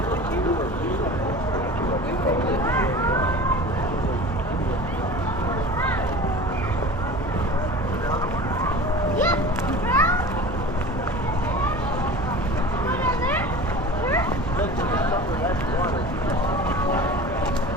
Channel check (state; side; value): normal; both; correlation 0.37